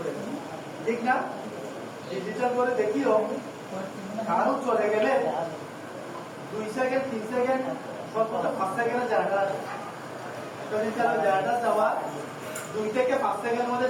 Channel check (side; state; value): both; identical; correlation 1.00